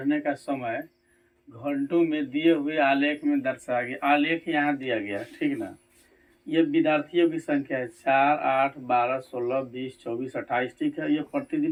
का समय घंटों में दिए हुए आलेख में दर्शाया गया। आलेख यहाँ दिया गया, ठीक ना। ये विद्यार्थियों की संख्या है 4, 8, 12, 16, 20, 24, 28, ठीक है। ये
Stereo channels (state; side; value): identical; both; correlation 1.00